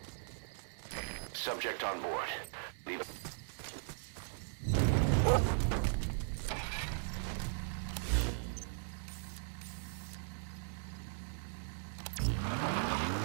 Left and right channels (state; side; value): silent; left; 52 dB below the other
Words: Subject on board. Leave it.